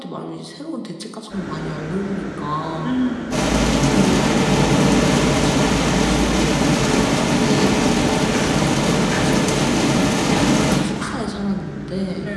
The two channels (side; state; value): both; identical; correlation 1.00